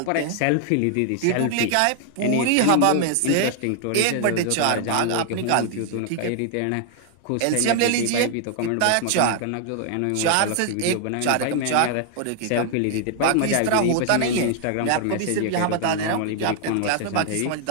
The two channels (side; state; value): both; different; correlation 0.00